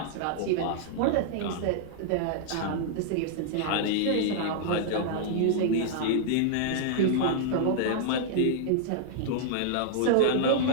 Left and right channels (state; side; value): different; both; correlation -0.01